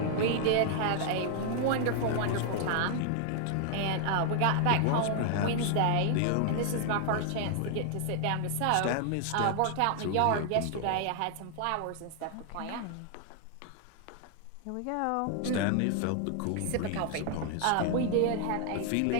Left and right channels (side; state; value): both; different; correlation 0.00